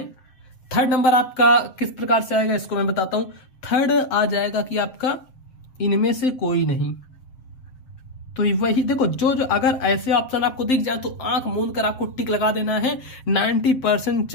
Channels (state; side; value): late; right; 7.7 ms